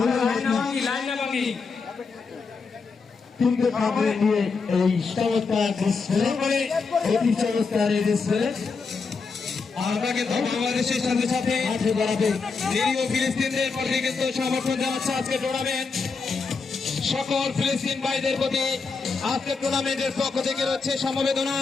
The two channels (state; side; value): quieter; right; 4.7 dB